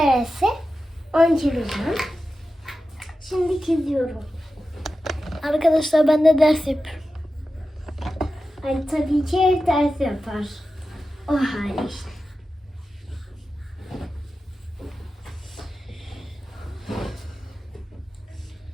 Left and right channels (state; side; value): normal; both; correlation 0.93